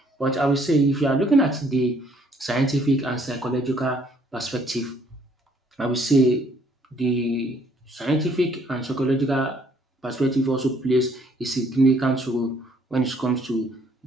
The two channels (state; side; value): normal; both; correlation 0.64